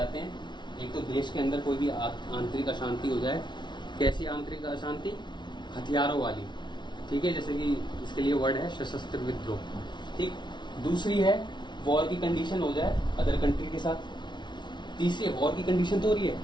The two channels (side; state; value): right; late; 0.22 ms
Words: हैं। एक तो देश के अंदर कोई भी आंतरिक अशांति हो जाए। कैसी आंतरिक अशांति? हथियारों वाली, ठीक है। जैसे कि इसके लिए वर्ड है सशस्त्र विद्रोह, ठीक। दूसरी है वॉर की कंडीशन हो जाए अदर कंट्री के साथ। तीसरी है वॉर की कंडीशन तो हो रही है